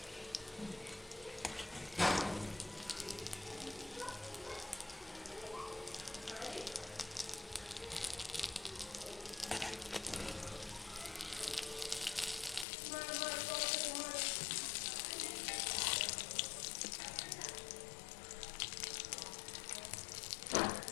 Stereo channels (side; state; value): right; drops out; at 12.7 s